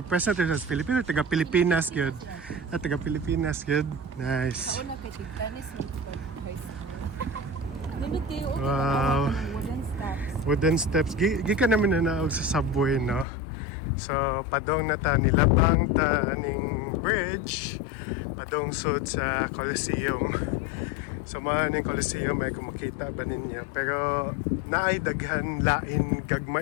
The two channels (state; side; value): drops out; right; at 13.2 s